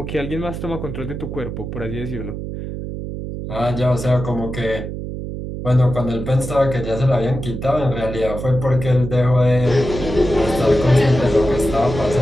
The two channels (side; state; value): right; noise; hum, 7 dB below the sound